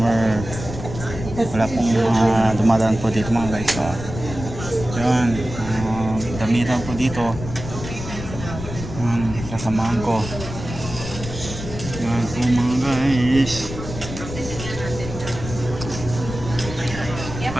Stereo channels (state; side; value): noise; left; rumble, 9 dB below the sound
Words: Wala pong dumadaan po dito mga guys. So, yun, damitan po dito. Kasamahan ko. Yan po mga guys.